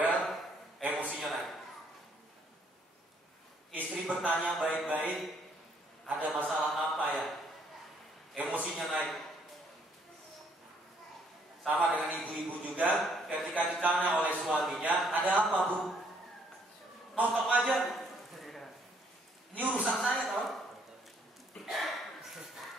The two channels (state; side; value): normal; both; correlation 0.67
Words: emosinya naik. Istri bertanya baik-baik, ada masalah apa ya? Emosinya naik. Sama dengan ibu-ibu juga, ketika ditanya oleh suaminya, ada apa bu? Nonton aja. Ini urusan saya tau.